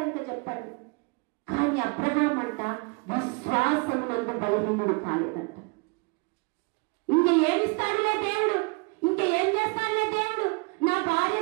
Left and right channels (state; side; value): quieter; left; 30.4 dB